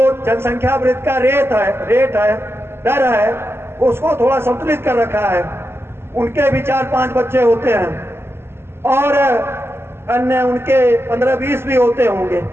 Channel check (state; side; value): late; left; 0.12 ms